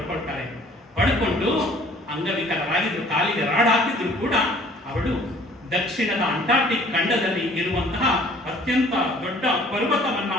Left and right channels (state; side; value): normal; both; correlation 0.54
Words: ಪಡ್ಕೊಂಡು ಅಂಗವಿಕಲರಾಗಿದ್ರು, ಕಾಲಿಗೆ ರಾಡ್ ಹಾಕಿದ್ರು ಕೂಡ ಅವಳು ದಕ್ಷಿಣದ ಅಂಟಾರ್ಟಿಕ್ ಖಂಡದಲ್ಲಿ ಇರುವಂತಹ ಅತ್ಯಂತ ದೊಡ್ಡ ಪರ್ವತವನ್ನ